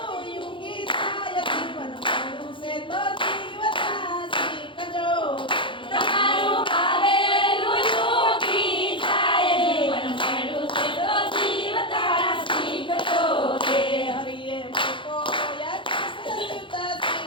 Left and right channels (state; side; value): late; right; 0.24 ms